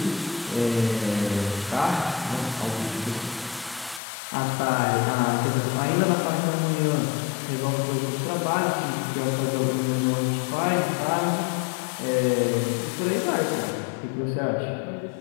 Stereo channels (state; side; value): drops out; right; at 4.0 s